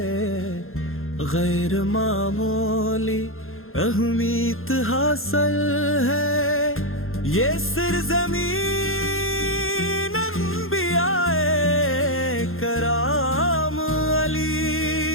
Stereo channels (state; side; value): late; right; 0.61 ms